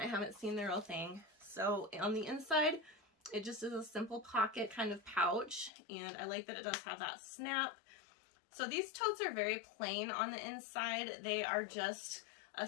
haven't seen the real thing. So on the inside, it just is a simple pocket kind of pouch, and I like that it does have that snap. So these totes are very plain on the inside. They are just a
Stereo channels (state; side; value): drops out; right; at 5.7 s